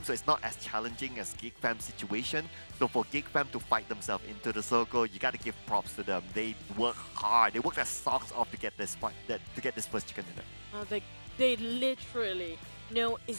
so it's not as challenging as GEEK fam's situation. So for GEEK fam to fight themselves into the circle, you gotta give props to them. They work hard. They work their socks off to get this first chicken dinner. They literally know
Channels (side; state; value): both; inverted; correlation -1.00